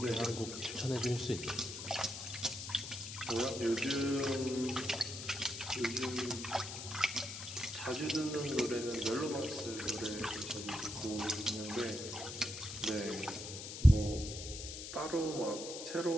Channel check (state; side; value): noise; left; hiss, 8 dB below the sound